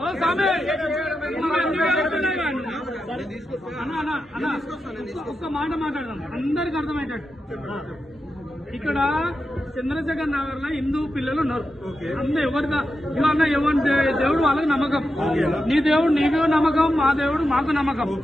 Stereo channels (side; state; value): both; normal; correlation 0.89